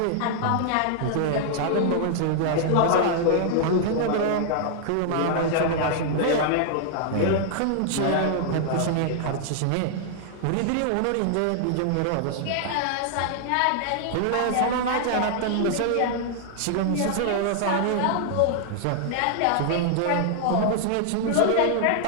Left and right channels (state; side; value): different; both; correlation -0.01